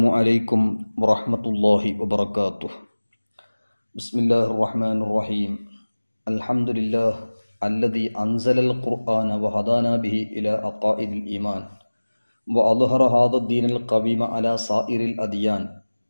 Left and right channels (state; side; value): inverted; both; correlation -1.00